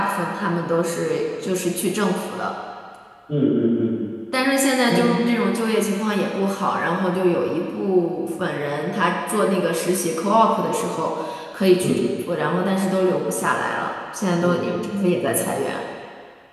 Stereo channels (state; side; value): identical; both; correlation 1.00